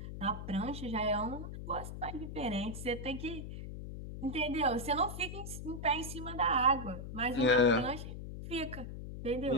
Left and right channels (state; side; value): noise; left; hum, 8 dB below the sound